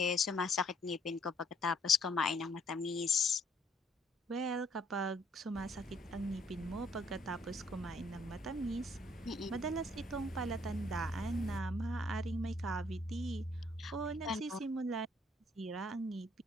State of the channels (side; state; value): both; normal; correlation 0.66